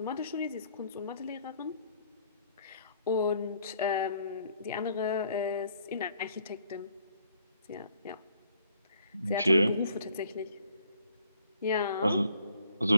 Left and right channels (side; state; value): both; inverted; correlation -0.64